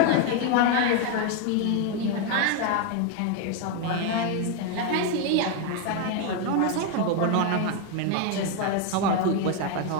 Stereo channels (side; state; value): both; different; correlation 0.01